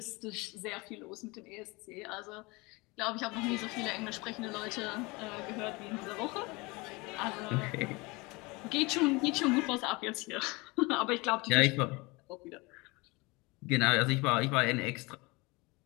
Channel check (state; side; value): quieter; right; 25.1 dB